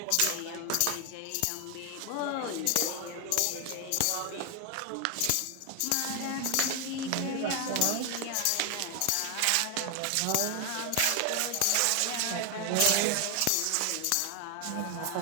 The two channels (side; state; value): both; different; correlation 0.00